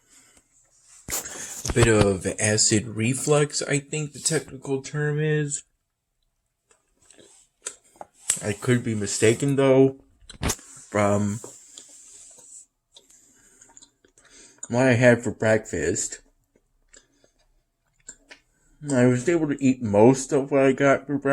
a bit of acid reflux, I think the technical term is. I could be mistaken though from what I had for breakfast. I was able to eat most of what I got for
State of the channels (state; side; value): identical; both; correlation 1.00